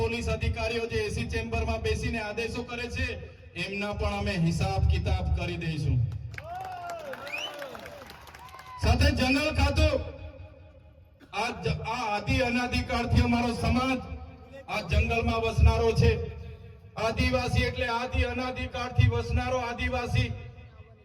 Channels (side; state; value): both; identical; correlation 1.00